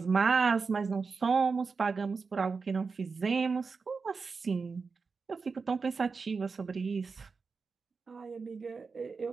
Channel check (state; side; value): quieter; left; 4.8 dB